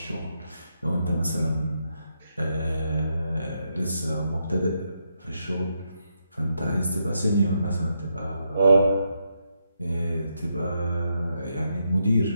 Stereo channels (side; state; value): both; inverted; correlation -0.81